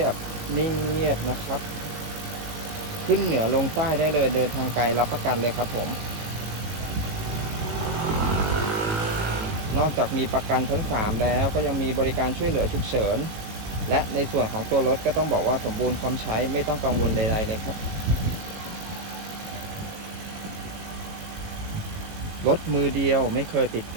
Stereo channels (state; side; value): late; left; 18 ms